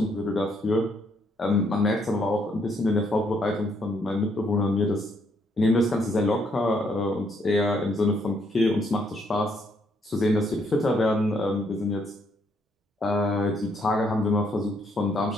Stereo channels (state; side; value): normal; both; correlation 0.71